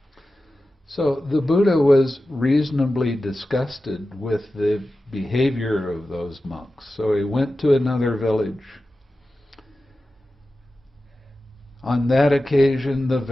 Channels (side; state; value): both; normal; correlation 0.94